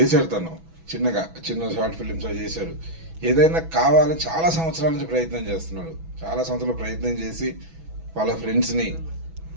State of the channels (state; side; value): late; left; 6.1 ms